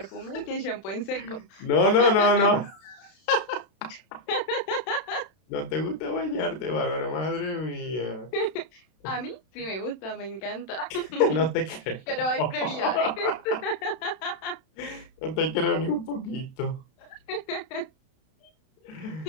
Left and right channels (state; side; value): late; right; 32 ms